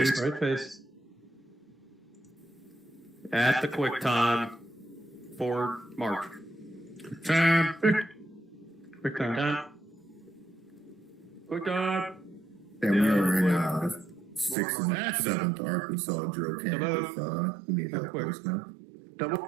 Right face. At the quick time. Forward march. Time. Quick time. Time. Quick time. And we are in 6th and 7th Arkansas drill camp with we need help with now.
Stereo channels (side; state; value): left; drops out; at 14.6 s